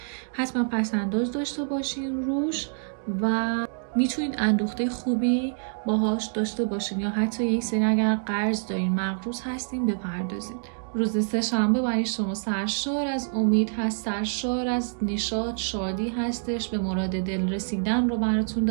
حتما پسنداز داشته باشین روش و میتونید اندوخته خوبی باهاش داشته باشین، یا حتی یک سری اگر قرض دارین مقروض هستین بپردازین. روز سه‌شنبه برای شما سرشار از امید هست، سرشار از نشاط، شادی هستش، به مراد دل رسیدن رو براتون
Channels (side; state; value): left; silent; digital silence